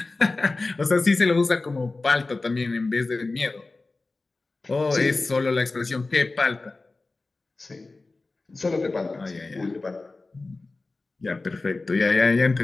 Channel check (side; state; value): right; quieter; 3.4 dB